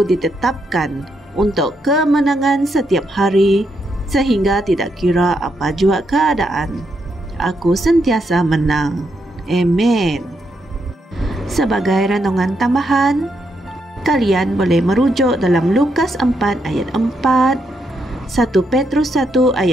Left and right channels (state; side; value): normal; both; correlation 0.79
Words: ditetapkan untuk kemenangan setiap hari, sehingga tidak kira apa jua keadaan, aku sentiasa menang. Amen. Sebagai renungan tambahan, kalian boleh merujuk dalam Lukas 4 ayat 4, 1 Petrus 1